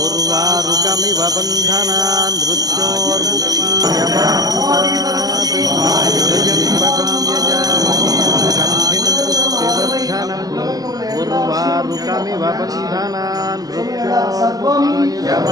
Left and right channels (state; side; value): late; left; 0.18 ms